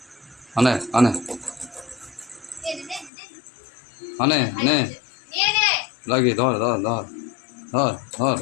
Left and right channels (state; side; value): drops out; right; at 3.1 s